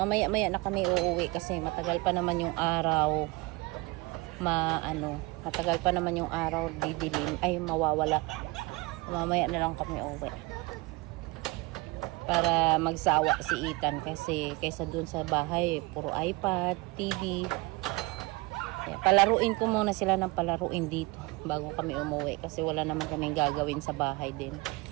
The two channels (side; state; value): left; quieter; 23.9 dB